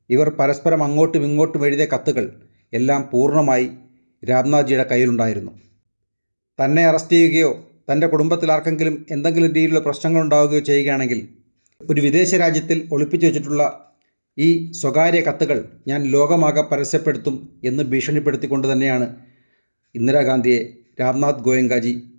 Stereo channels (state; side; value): inverted; both; correlation -1.00